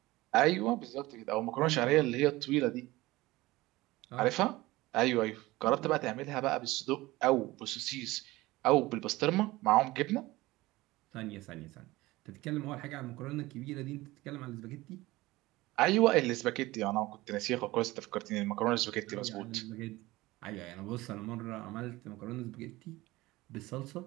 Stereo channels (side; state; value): left; quieter; 19.3 dB